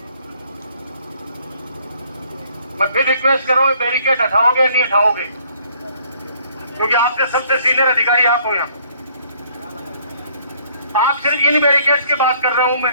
मैं फिर रिक्वेस्ट कर रहा हूं, बैरिकेड हटाओगे नहीं हटाओगे, क्योंकि आपके सबसे सीनियर अधिकारी आप हो यहाँ। आप सिर्फ इन बैरिकेड्स की बात कर रहा हूं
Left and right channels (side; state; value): both; inverted; correlation -0.62